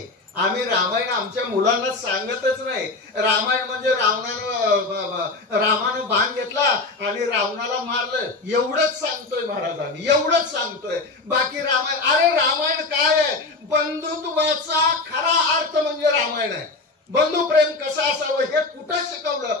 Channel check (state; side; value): quieter; right; 3.5 dB